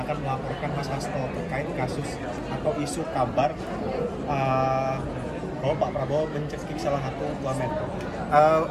akan melaporkan Mas Hasto terkait kasus atau isu kabar bahwa Pak Prabowo mencekik salah satu wamen.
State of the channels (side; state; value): both; identical; correlation 1.00